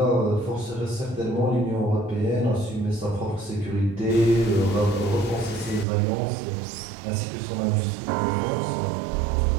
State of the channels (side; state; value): left; drops out; at 5.9 s